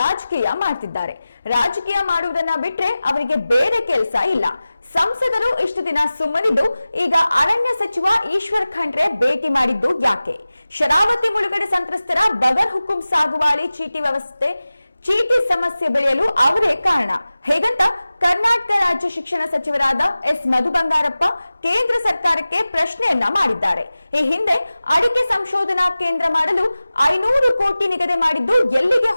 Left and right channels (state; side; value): inverted; both; correlation -0.97